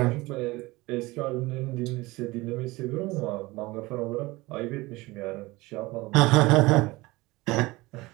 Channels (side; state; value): left; quieter; 21.3 dB